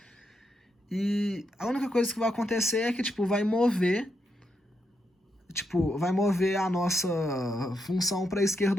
E a única coisa que vai acontecer é que, tipo, vai mover a nossa função para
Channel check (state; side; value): normal; both; correlation 0.81